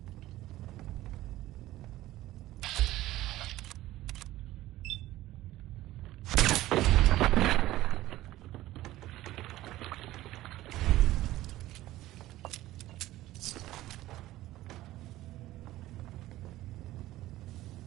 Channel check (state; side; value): quieter; left; 15.8 dB